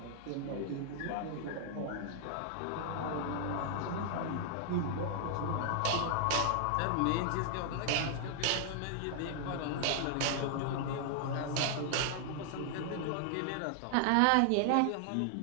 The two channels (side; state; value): both; different; correlation -0.01